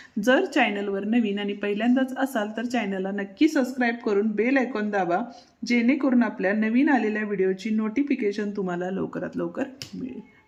जर चॅनलवर नवीन आणि पहिल्यांदाच असाल तर चॅनलला नक्की सबस्क्राईब करून बेल आयकॉन दाबा जेणेकरून आपल्या नवीन आलेल्या व्हिडिओची नोटिफिकेशन तुम्हाला लवकरात लवकर मिळेल.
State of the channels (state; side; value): identical; both; correlation 1.00